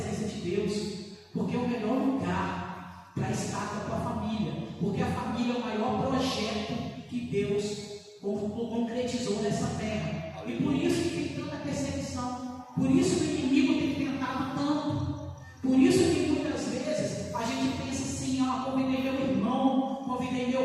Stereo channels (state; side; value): identical; both; correlation 1.00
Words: de Deus, porque é o melhor lugar para estar com a tua família, porque a família é o maior projeto que Deus concretizou nessa terra. E por isso que tem tanta perseguição, por isso que o inimigo tem tentado tanto, por isso que muitas vezes a gente pensa assim: convidei meu irmão, convidei